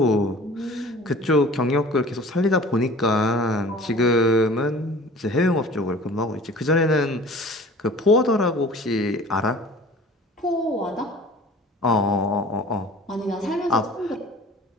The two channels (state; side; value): normal; both; correlation 0.44